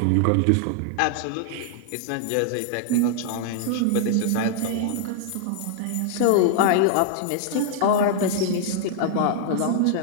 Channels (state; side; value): different; both; correlation -0.01